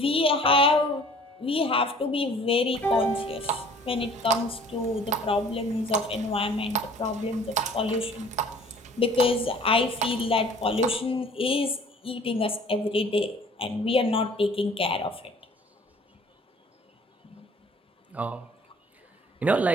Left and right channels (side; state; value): both; normal; correlation 0.51